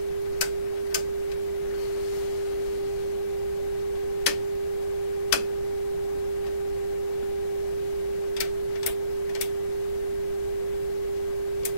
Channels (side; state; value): right; late; 9.0 ms